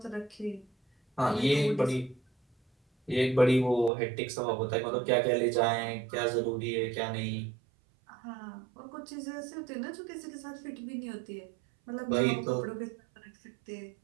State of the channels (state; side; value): drops out; left; at 3.9 s